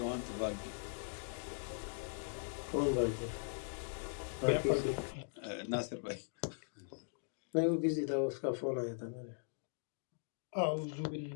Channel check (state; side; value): silent; right; digital silence